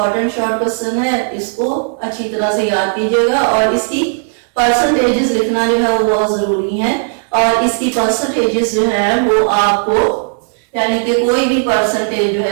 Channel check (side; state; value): left; silent; digital silence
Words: शॉर्ट क्वेश्चन है, इसको अच्छी तरह से याद कीजिएगा और इसकी परसेंटेजेस लिखना जो है वो बहुत जरूरी है। और इसकी परसेंटेजेस जो है वो आपको यानी कि कोई भी परसेंटेज जो